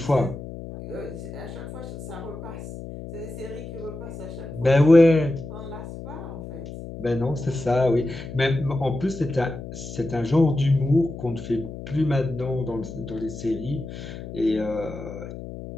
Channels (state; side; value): noise; left; hum, 11 dB below the sound